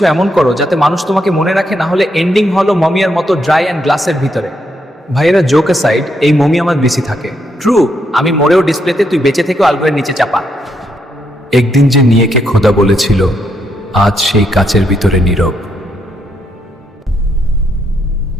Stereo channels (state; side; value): normal; both; correlation 0.78